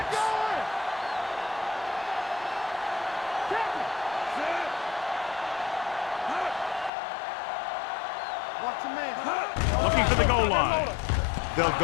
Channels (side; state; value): right; drops out; at 6.9 s